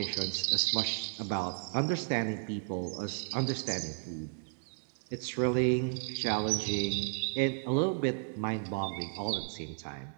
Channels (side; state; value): left; silent; 55 dB below the other